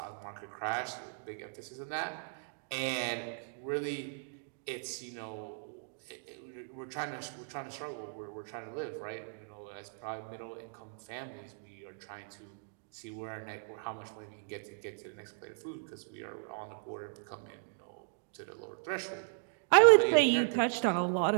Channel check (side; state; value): left; silent; digital silence